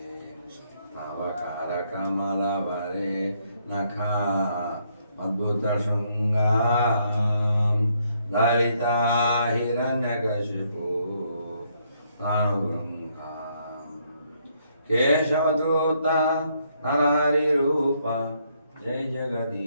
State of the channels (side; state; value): both; inverted; correlation -0.72